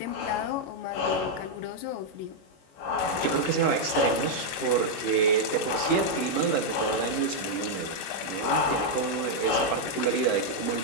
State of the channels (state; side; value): late; right; 21 ms